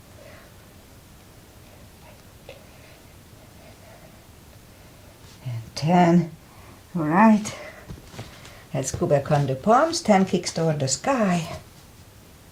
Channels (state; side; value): identical; both; correlation 1.00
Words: 10. All right. Let's go back on the palms. 10 kicks toward the sky.